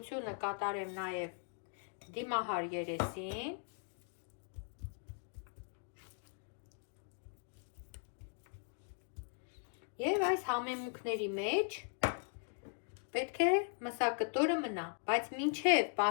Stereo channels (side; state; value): right; silent; 52 dB below the other